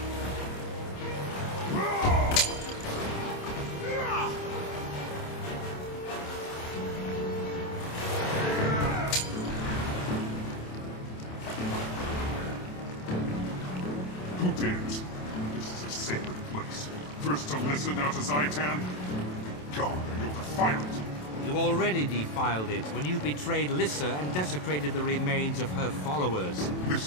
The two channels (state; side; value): late; right; 27 ms